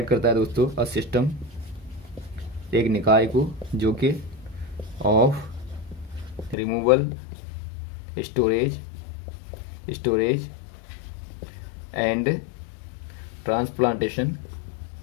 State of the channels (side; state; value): right; drops out; at 6.6 s